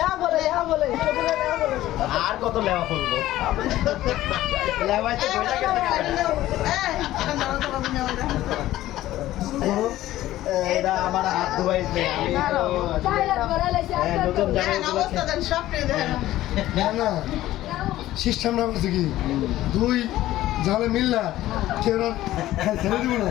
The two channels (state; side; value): quieter; right; 14.9 dB